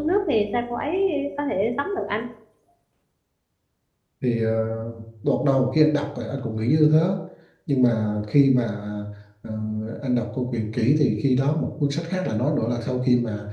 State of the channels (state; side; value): identical; both; correlation 1.00